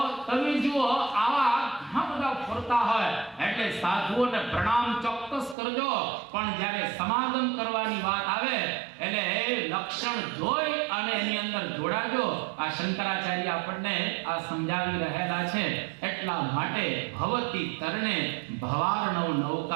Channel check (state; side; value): drops out; left; at 5.6 s